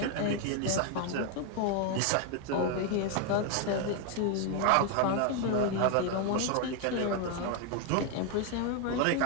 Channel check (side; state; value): both; different; correlation 0.01